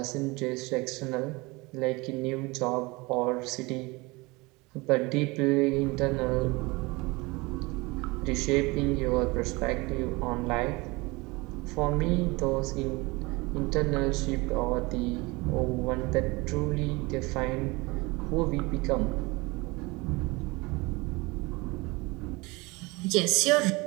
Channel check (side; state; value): left; quieter; 24.4 dB